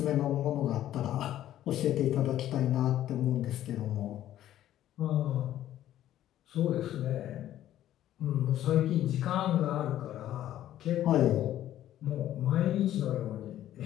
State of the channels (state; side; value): quieter; right; 12.6 dB